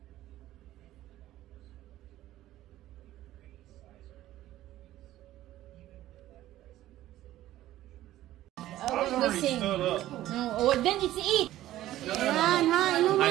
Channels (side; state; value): left; quieter; 14.4 dB